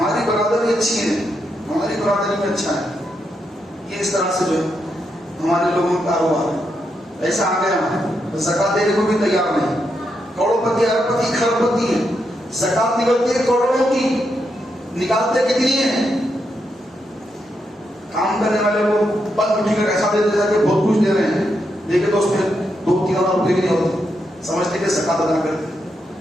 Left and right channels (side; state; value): both; normal; correlation 0.82